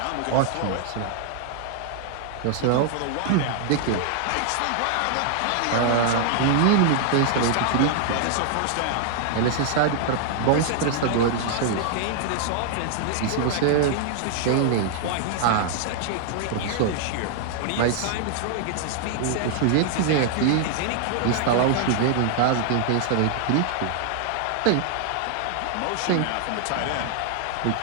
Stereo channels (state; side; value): different; both; correlation -0.01